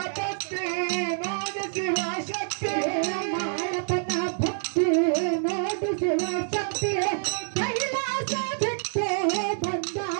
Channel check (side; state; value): left; silent; digital silence